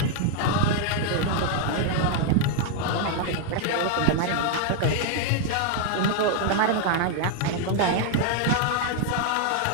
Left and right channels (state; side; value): different; both; correlation 0.00